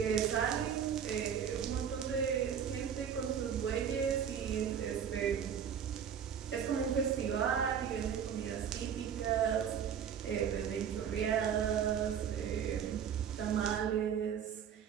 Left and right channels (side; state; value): left; quieter; 8.1 dB